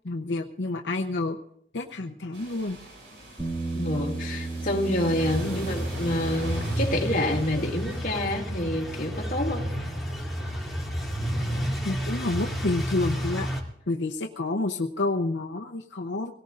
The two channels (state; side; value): normal; both; correlation 0.61